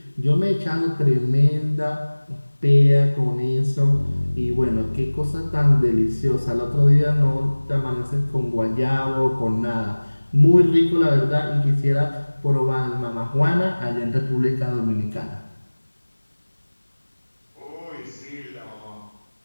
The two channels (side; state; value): both; inverted; correlation -1.00